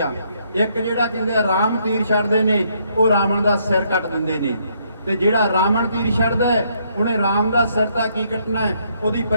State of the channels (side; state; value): both; inverted; correlation -0.71